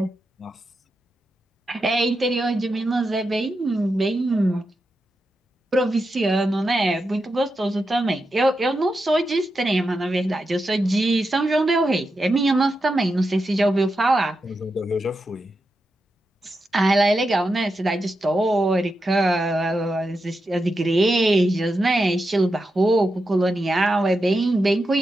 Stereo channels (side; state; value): both; normal; correlation 0.88